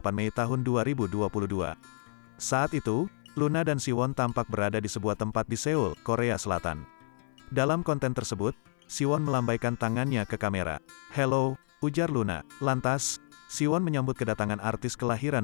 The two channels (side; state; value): right; silent; 57 dB below the other